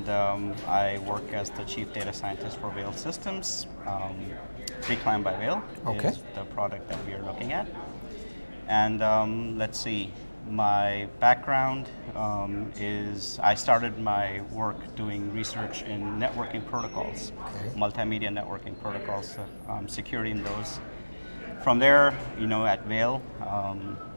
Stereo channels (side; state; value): both; inverted; correlation -1.00